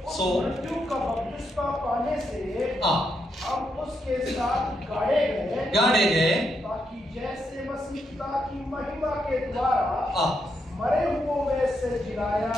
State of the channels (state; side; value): normal; both; correlation 0.80